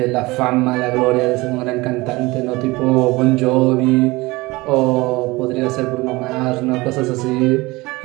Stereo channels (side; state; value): left; quieter; 21.9 dB